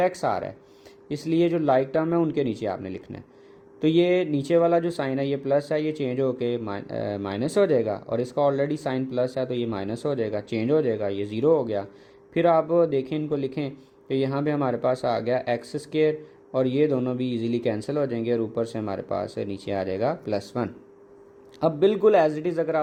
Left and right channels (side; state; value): both; identical; correlation 1.00